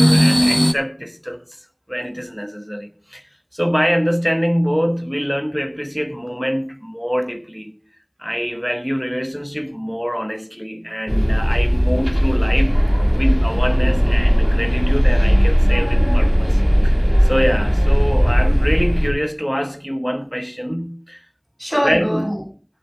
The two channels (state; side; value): identical; both; correlation 1.00